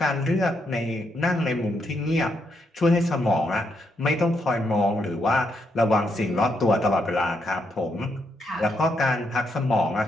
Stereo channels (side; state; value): both; normal; correlation 0.78